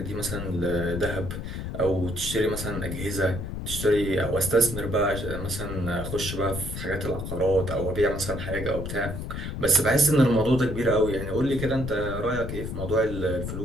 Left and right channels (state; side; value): noise; left; rumble, 6 dB below the sound